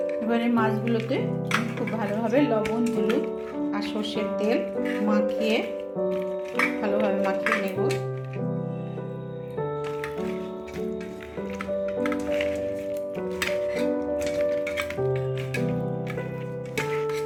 এবারে মাছগুলোতে খুব ভালোভাবে লবণ, হলুদ আর সরষের তেল ভালোভাবে মাখিয়ে নেব।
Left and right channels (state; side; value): identical; both; correlation 1.00